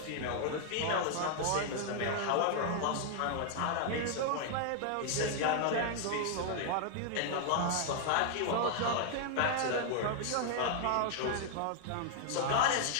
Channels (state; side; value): different; both; correlation 0.00